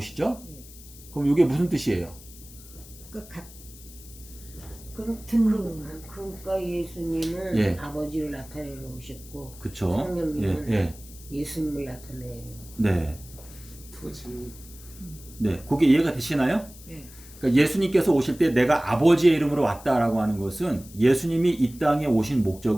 네. 그럼 이게 무슨 뜻이에요? 그러니까 예수님은 예. 아버지를 나타내러 오셨고 그쵸? 성령님은 예수님을 나타내요. 네. 네, 그게 이해가 되시나요? 네. 그러니까 예수님께서 오실 때 내가 아버지의 이름으로 왔다라고 하는 것은 예수님이 이 땅에 오신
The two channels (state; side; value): noise; left; hiss, 19 dB below the sound